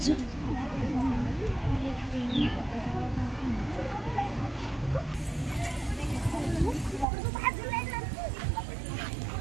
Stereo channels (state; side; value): drops out; left; at 7.1 s